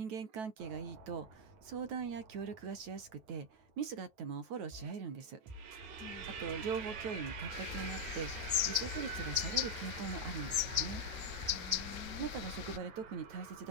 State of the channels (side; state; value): left; late; 9.2 ms